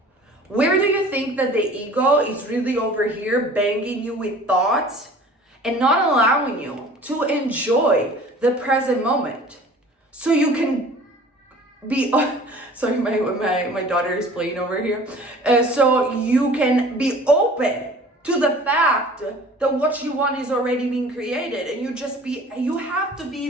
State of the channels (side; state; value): both; normal; correlation 0.46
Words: Where do you think that the ego is really over here banging you with thoughts and not allowing you to enjoy the present moment? So you can be, sorry, my daughter is playing over here. So you can be open to the fact that what you want is already being created, and you have to